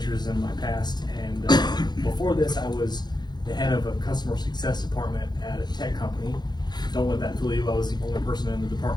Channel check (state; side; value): late; right; 0.21 ms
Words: in my past, and before this I was the head of a customer success department at a tech company. Don't let that fool you, I was the only person in the